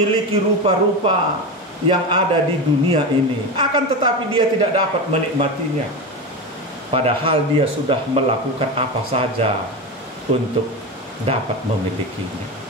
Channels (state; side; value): normal; both; correlation 0.20